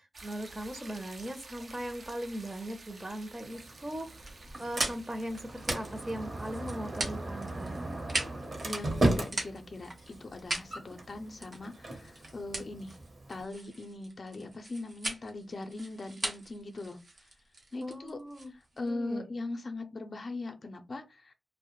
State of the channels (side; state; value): both; normal; correlation 0.92